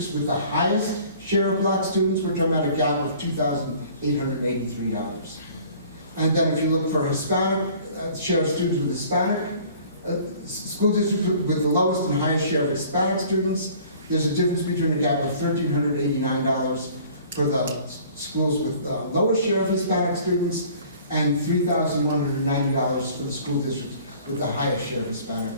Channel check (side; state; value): both; inverted; correlation -0.51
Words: with the highest share of black students, we're talking about a gap of $2,883. And then if you look for Hispanic, share of students with Hispanic, school districts with the lowest and highest share of Hispanic students, there's a difference between a gap of $1,389 for the schools with the lowest share of Hispanic students and $3,190 for the school districts with the highest share of Hispanic